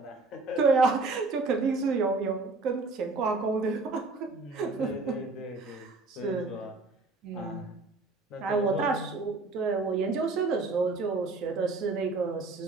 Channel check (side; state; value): left; quieter; 3.6 dB